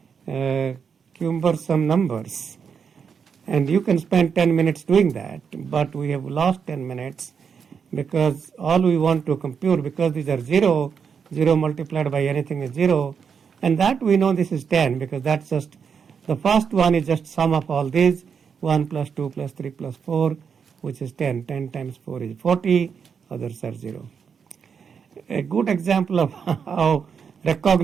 cumbersome numbers. And you can spend 10 minutes doing that, but we have lost 10 minutes because all we want to compute, because these are 0, 0 multiplied by anything is 0, and that we know this is 10 because that's just, the first one is just sum of all these, 1 plus 2 plus 3 plus 4, which is 10. 10 times 4 is 40, others are 0. A good example of how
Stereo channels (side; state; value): left; quieter; 6.6 dB